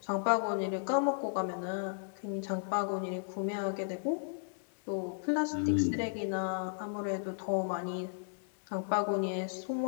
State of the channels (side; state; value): right; silent; 55 dB below the other